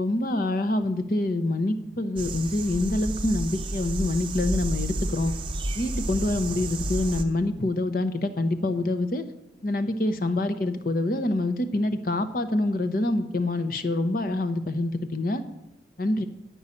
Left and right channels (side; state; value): both; normal; correlation 0.81